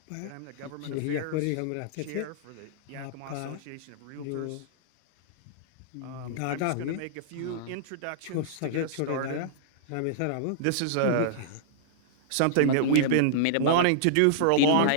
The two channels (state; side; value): different; both; correlation -0.02